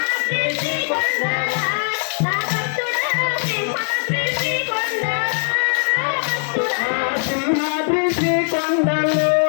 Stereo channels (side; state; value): right; silent; digital silence